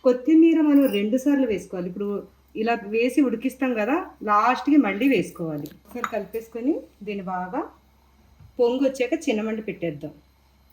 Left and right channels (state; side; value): identical; both; correlation 1.00